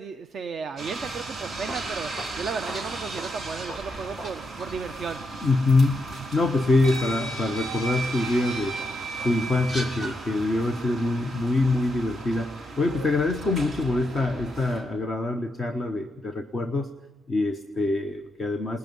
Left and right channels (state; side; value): normal; both; correlation 0.82